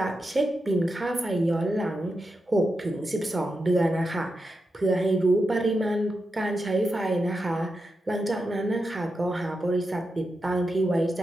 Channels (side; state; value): both; normal; correlation 0.88